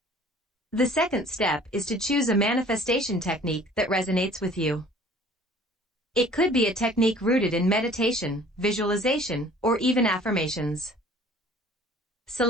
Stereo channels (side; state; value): both; normal; correlation 0.51